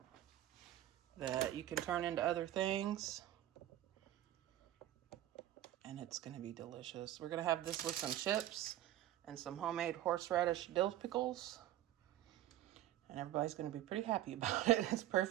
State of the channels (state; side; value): quieter; left; 13.3 dB